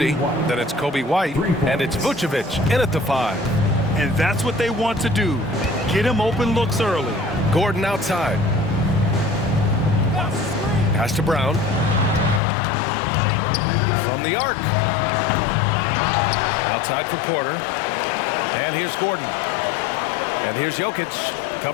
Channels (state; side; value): drops out; right; at 12.4 s